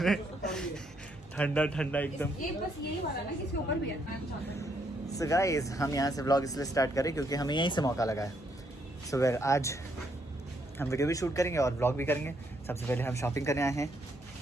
ठंडा ठंडा एकदम। ये बस यही वाला ना किसी ऊपर भी है। सो गाइस हम यहाँ से व्लॉग इसलिए स्टार्ट करें क्योंकि हमें यहीं से मौका लगा है। सो फिर आज हम वीडियो भी शूट करेंगे और व्लॉग भी करेंगे। सबसे पहले हम शॉपिंग करने आए हैं।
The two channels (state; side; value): normal; both; correlation 0.73